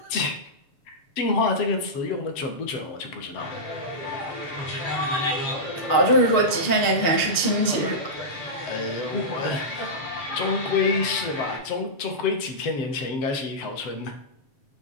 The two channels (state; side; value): late; right; 6.7 ms